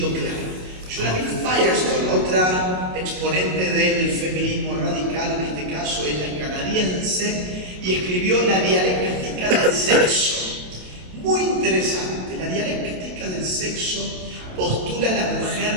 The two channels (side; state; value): left; late; 27 ms